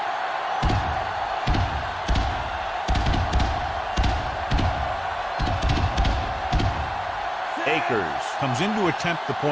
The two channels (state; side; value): identical; both; correlation 1.00